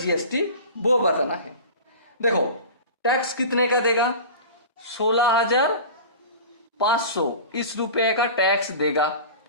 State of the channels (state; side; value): inverted; both; correlation -0.35